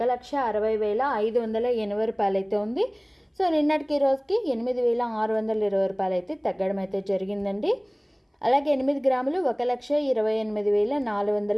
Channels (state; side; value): identical; both; correlation 1.00